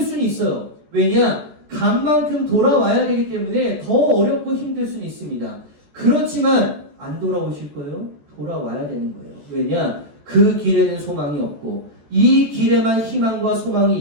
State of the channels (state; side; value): late; left; 14 ms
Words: 있어요. 왜냐? 간 만큼 돌아와야 되기 때문에 더 어렵고 힘들 수는 있습니다. 그렇지만 안 돌아오실 거예요? 돌아와야 되는 거예요. 왜냐? 그 길에는 소망이 없고 이 길에만 희망과 소망이